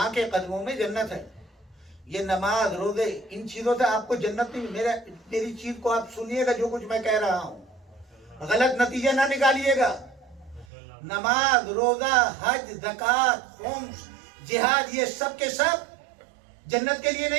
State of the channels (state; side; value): drops out; left; at 10.7 s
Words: کے قدموں میں جنت ہے. یہ نماز روزے ان چیزوں سے آپ کو جنت نہیں. میری چیز کو آپ سنیے گا، جو کچھ میں کہہ رہا ہوں غلط نتیجہ نہ نکالیے گا. نماز روزہ حج زکوٰۃ خمس جہاد یہ سب کے سب جنت کے لیے